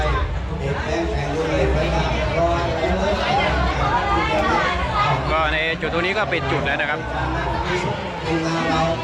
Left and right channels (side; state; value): both; identical; correlation 1.00